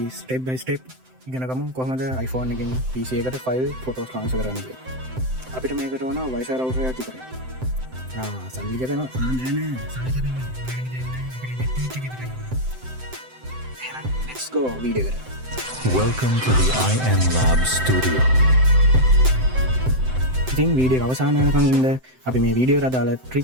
step by step ඉගෙන ගමු කොහොමද iPhone එකෙන් PC එකට file photos transfer කරන්න කියලා. අපිට මේකට ඕන Wi-Fi router එකක් විතරයි. සල්ලි කැපෙනවා. නෑ සල්ලි කැපෙන්නේ. එහෙනම් let's go වීඩියෝ එකට. Welcome to the IM Lab Studio. ඉතින් වීඩියෝ අවසාන වෙනකන් ඉන්න අපි මේ වීඩියෝ එකට අදාළ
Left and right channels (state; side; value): late; left; 7.8 ms